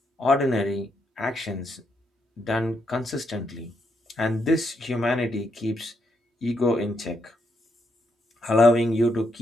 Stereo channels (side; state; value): both; normal; correlation 0.78